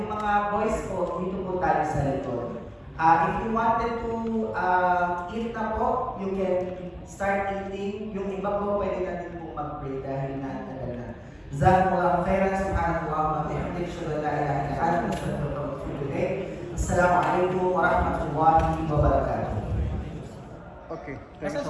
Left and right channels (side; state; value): both; identical; correlation 1.00